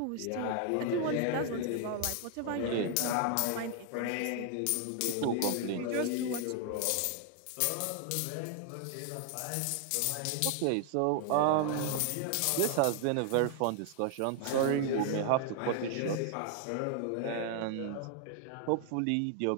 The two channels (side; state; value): both; different; correlation 0.00